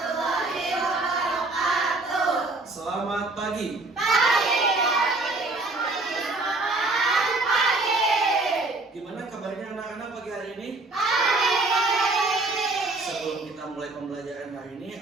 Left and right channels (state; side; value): quieter; left; 3.1 dB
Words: wabarakatuh. Selamat pagi. Pagi. Gimana kabarnya anak-anak pagi hari ini? Sebelum kita mulai pembelajaran hari